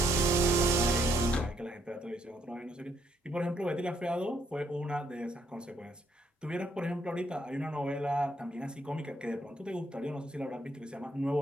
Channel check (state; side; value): normal; both; correlation 0.72